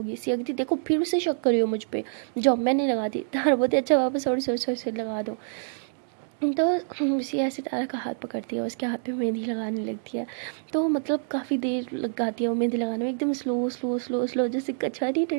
सिया कहती देखो फिर से शक करी हो मुझ पर, जाओ मैं नहीं लगाती। तारा बोलती अच्छा वापस सॉरी सॉरी सॉरी सॉरी लगा दो। तो सिया सितारा का हाथ पकड़ती है, उसके हाथ पे मेहंदी लगाने लगती है। तो मतलब काफ़ी देर लगाती है वो मेहंदी लगाने में, एकदम स्लो स्लो स्लो स्लो, जैसे कछा नहीं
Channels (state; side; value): silent; left; digital silence